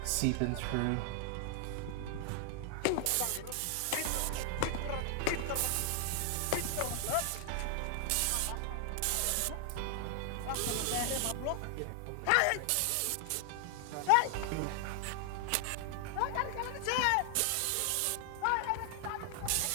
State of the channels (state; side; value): different; both; correlation 0.00